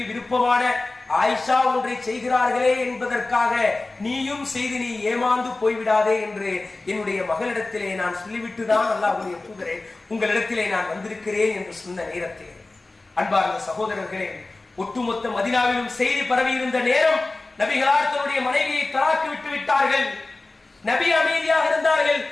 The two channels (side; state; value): right; quieter; 3.2 dB